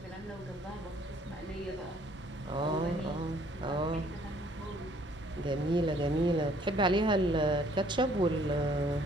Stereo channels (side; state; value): both; normal; correlation 0.61